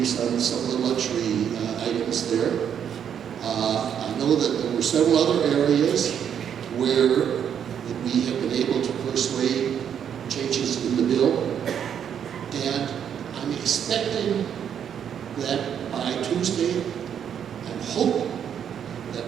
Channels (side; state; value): left; quieter; 8.6 dB